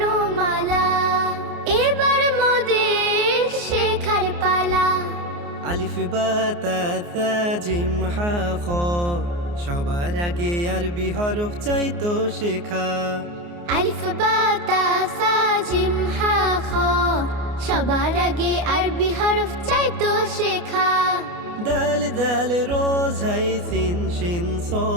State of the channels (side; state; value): left; late; 29 ms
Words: এবার মোদের শেখার পালা। আলিফ বা তা থা জিম হা খ, সবার আগে আরবি হরফ চাইতো শেখা। আলিফ বা তা সা জিম হা খ, সবার আগে আরবি হরফ চাইতো শেখা। দাল দাল রোজ হাই সিন শিন